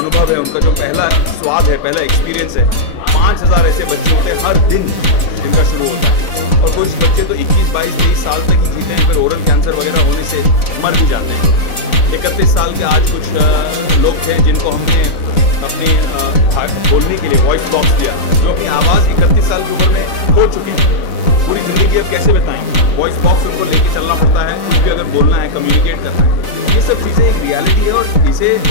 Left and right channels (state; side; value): late; right; 4.0 ms